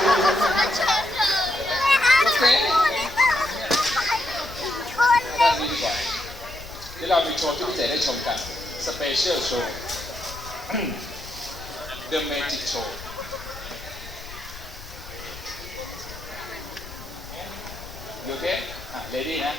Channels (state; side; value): noise; left; rumble, 16 dB below the sound